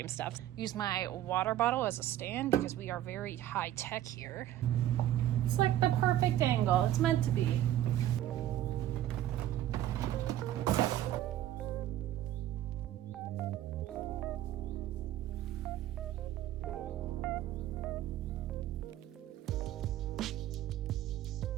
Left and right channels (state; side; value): quieter; left; 12.7 dB